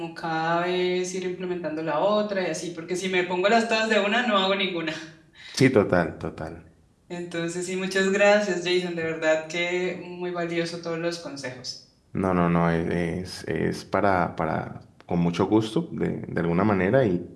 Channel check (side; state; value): both; identical; correlation 1.00